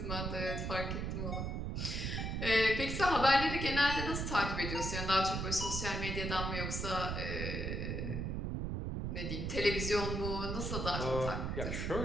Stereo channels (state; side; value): noise; right; rumble, 2 dB below the sound